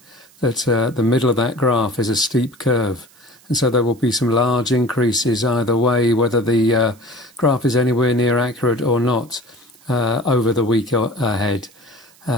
that the middle of that graph is a steep curve. And so there will be some large increases either way, whether the graph is anywhere near accurate or not, over the week ahead.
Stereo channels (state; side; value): noise; right; hiss, 28 dB below the sound